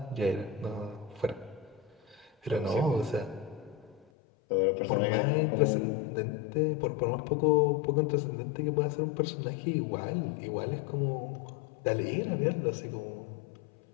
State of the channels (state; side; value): drops out; right; at 4.0 s